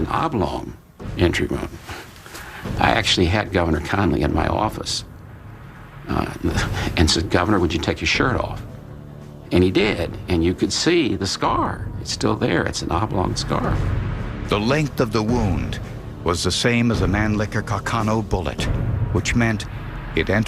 oblong entry wound. I actually had Governor Connally in my office and said, "Governor, would you take your shirt off?" And he did, and you could see the scar. It's still there. It's an oblong scar. The length of the wound was the same as a Mannlicher Carcano bullet, which meant it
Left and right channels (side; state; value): both; identical; correlation 1.00